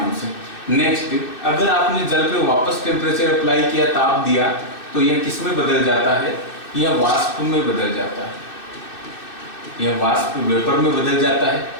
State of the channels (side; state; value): right; late; 2.6 ms